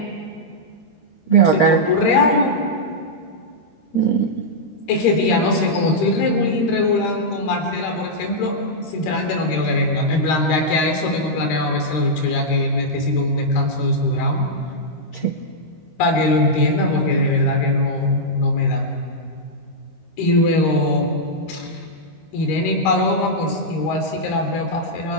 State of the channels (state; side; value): late; right; 13 ms